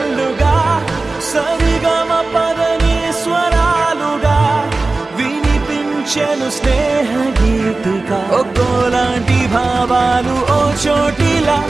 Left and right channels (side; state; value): left; quieter; 3.4 dB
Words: సరిగమ పదని స్వరాలుగా వినిపించెను స్నేహ గీతిగా ఒక్కోలాంటి భావాలు ఓ చోటిలా